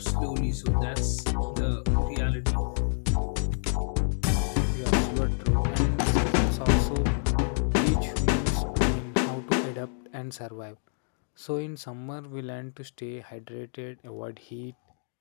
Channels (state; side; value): silent; right; digital silence